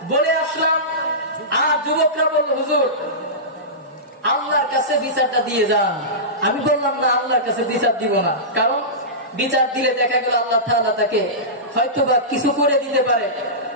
বলে আসলাম, আর যুবকরা বলল হুজুর আল্লাহর কাছে বিচারটা দিয়ে যান। আমি বললাম না, আল্লাহর কাছে বিচার দিব না, কারণ বিচার দিলে দেখা গেল আল্লাহ তাআলা তাকে হয়তো বা কিছু করে দিতে পারে।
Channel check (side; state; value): both; normal; correlation -0.19